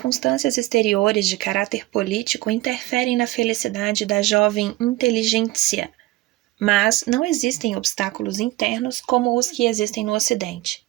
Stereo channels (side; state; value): left; quieter; 18.7 dB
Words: exteriores de caráter político interferem na felicidade da jovem inteligência, mas não existem obstáculos internos como os que existem no Ocidente.